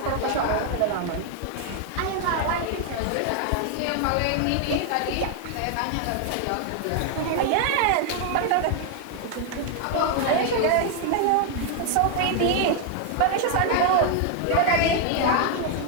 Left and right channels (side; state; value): both; different; correlation 0.00